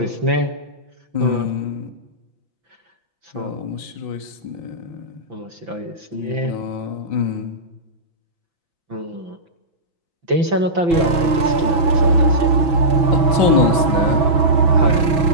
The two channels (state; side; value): late; left; 6.1 ms